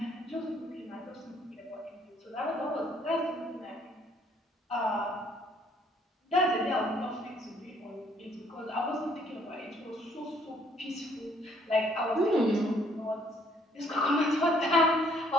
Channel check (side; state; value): both; normal; correlation 0.64